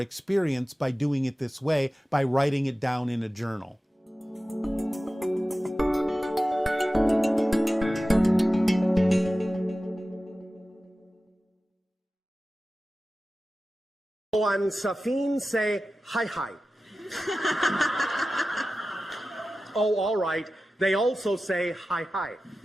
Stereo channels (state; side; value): normal; both; correlation 0.95